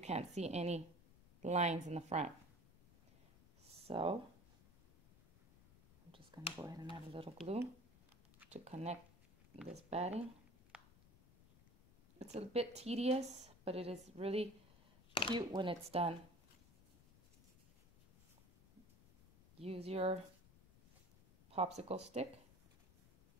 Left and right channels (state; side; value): noise; left; rumble, 25 dB below the sound